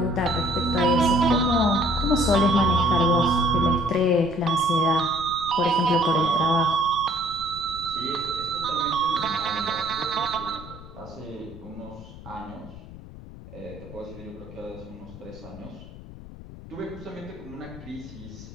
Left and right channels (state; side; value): noise; left; rumble, 15 dB below the sound